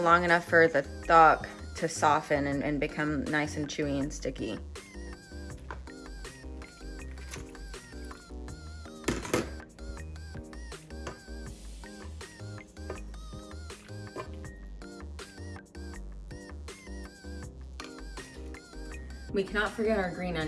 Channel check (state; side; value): identical; both; correlation 1.00